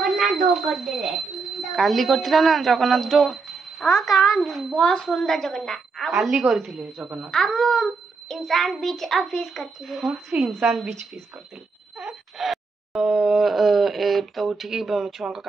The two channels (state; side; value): quieter; left; 4.4 dB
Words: दो कर दे काली करथिला ना जगन्नाथ दो हां का बहुत सुंदर जगन्नाथ काली करथिले जगन्नाथ हम इंसान बीच फिश करथिले हां से इंसान बीच फिश करथिले तो उठिकी छुआ